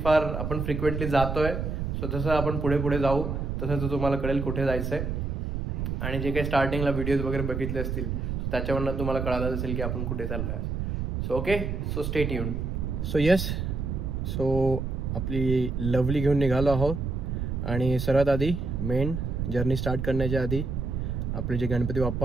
फार आपण फ्रिक्वेंटली जातोय. सो जसं आपण पुढे पुढे जाऊ तसं तुम्हाला कळेल कुठे जायचं आहे. आणि जे काही स्टार्टिंगला व्हिडिओज वगैरे बघितले असतील त्याच्यावरनं तुम्हाला कळालं असेल की आपण कुठे चाललो आहे. So okay, so stay tuned. So yes, so आपली लवली घेऊन निघालो आहोत. आणि सर्वात आधी मेन जर्नी स्टार्ट करण्याच्या आधी आपले जे गणपती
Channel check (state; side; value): noise; right; rumble, 2 dB below the sound